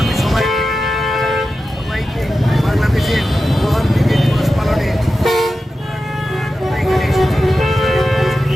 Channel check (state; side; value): normal; both; correlation 0.92